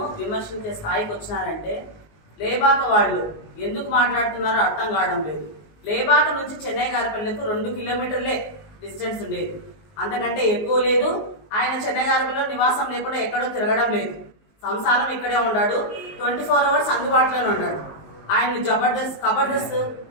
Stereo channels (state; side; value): late; right; 19 ms